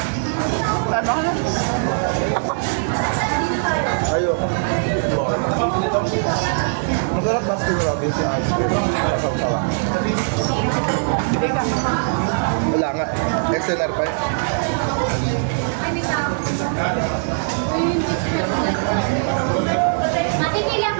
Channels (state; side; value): silent; left; digital silence